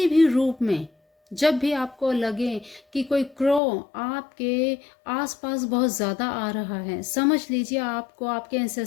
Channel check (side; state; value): right; drops out; at 3.6 s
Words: भी रूप में, जब भी आपको लगे कि कोई क्रो आपके आसपास बहुत ज़्यादा आ रहा है, समझ लीजिए आपको आपके